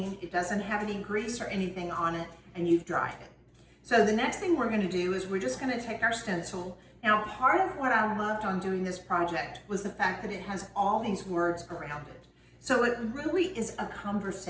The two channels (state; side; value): identical; both; correlation 1.00